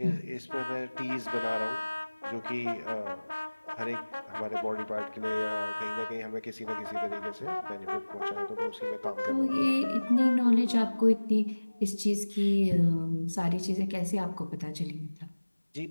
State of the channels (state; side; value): inverted; both; correlation -1.00